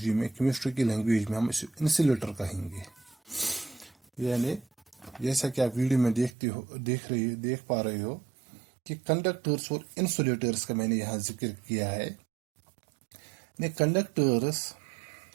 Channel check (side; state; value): left; drops out; at 6.3 s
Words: में, केमिस्ट्री की लैंग्वेज में हम इसे इंसुलेटर कहेंगे। यानी जैसा कि आप वीडियो में देख पा रहे हो कि कंडक्टर्स और इंसुलेटर्स का मैंने यहाँ जिक्र किया है। कंडक्टर्स